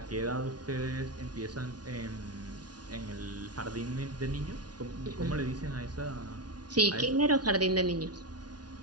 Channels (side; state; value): left; late; 0.69 ms